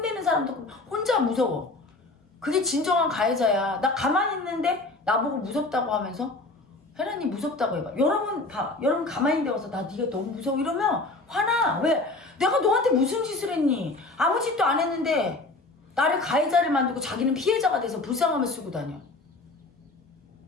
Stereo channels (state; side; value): quieter; right; 3.1 dB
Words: 사람도 혼자 무서워. 그게 진정한 가해자야. 나 가만히 있는데 나보고 무섭다고 하면서 혜란이 무섭다고 해봐. 여러분 가만히 있는데 와서 나 네가 너무 무서워 이러면 화나. 왜? 내가 너한테 무슨 짓을 했니? 아무 짓도 안 했는데 나를 가해자를 만들고 자기는 피해자가 돼서 불쌍함을 쓰고 다녀.